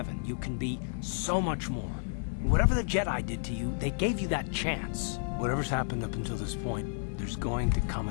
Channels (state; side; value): silent; right; digital silence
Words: You can be so much more. Whatever the Jedi did to you, they gave you that chance. Whatever's happened up until this point, there's going to come